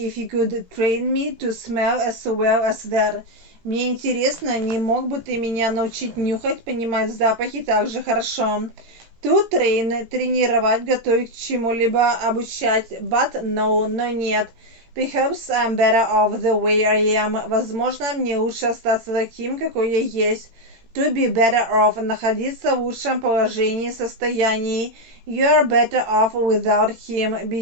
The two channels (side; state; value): left; late; 17 ms